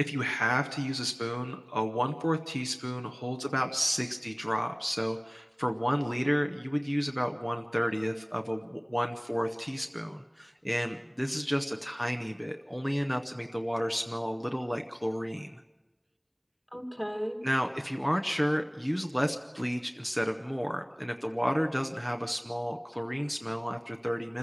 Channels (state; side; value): identical; both; correlation 1.00